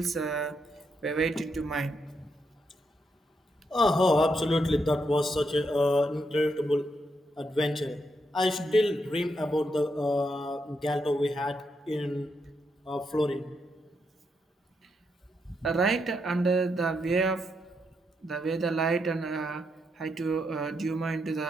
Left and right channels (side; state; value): both; normal; correlation 0.80